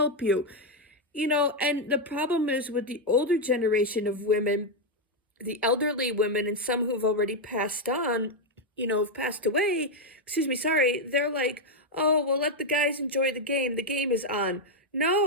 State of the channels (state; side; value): normal; both; correlation 0.02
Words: you. And the problem is with the older generation of women, the elderly women, and some who've already passed on, have passed away, they're like, oh, well, let the guys enjoy the game. The game is on.